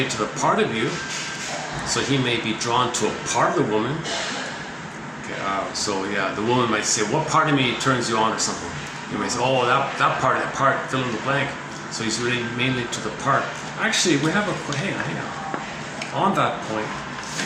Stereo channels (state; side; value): identical; both; correlation 1.00